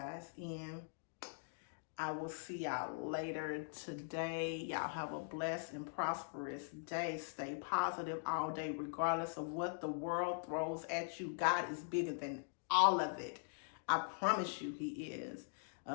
and I will see y'all later today. Y'all have a blessed and prosperous day. Stay positive all day, regardless of what the world throws at you. God is bigger than all of it. I promise you he is.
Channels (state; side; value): silent; right; digital silence